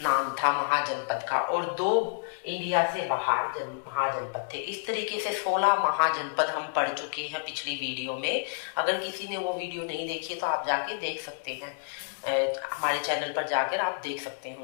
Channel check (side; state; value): right; silent; 58 dB below the other